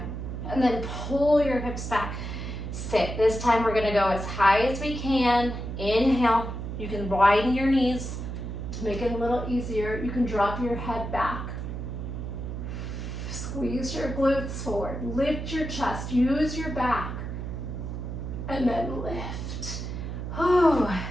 And then pull your hips back. Sit. This time we're gonna go as high as we can. Inhale. You can widen your knees to make it a little easier. You can drop your head back. Squeeze your glutes forward. Lift your chest. Use your back. And then lift. Oh,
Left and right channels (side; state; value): right; noise; hum, 6 dB below the sound